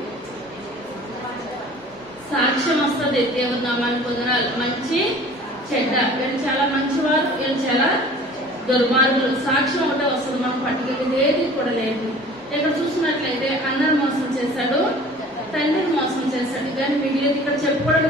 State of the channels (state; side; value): normal; both; correlation 0.46